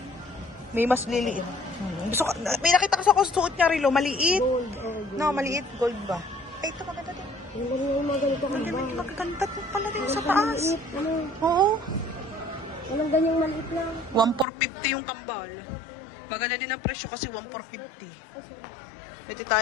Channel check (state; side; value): drops out; right; at 14.5 s